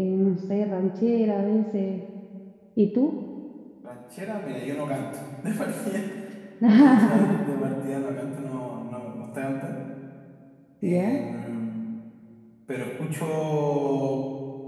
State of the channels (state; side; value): identical; both; correlation 1.00